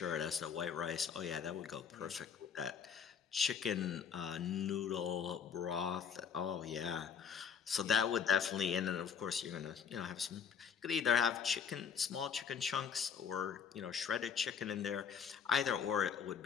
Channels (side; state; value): right; quieter; 7.1 dB